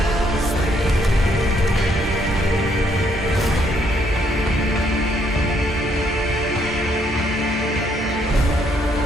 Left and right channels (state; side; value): normal; both; correlation 0.71